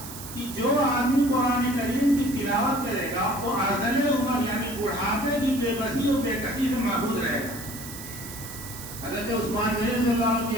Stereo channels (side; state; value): right; noise; hiss, 12 dB below the sound